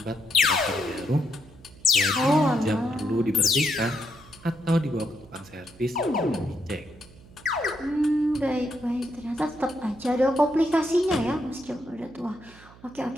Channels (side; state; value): right; noise; hum, 23 dB below the sound